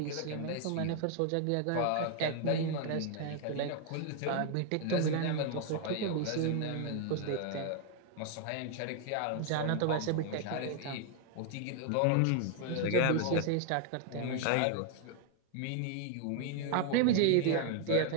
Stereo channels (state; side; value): different; both; correlation 0.00